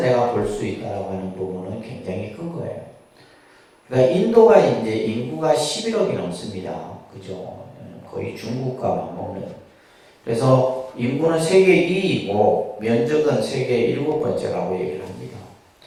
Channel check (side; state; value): both; identical; correlation 1.00